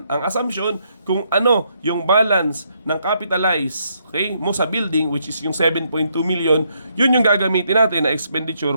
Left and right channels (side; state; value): both; inverted; correlation -0.75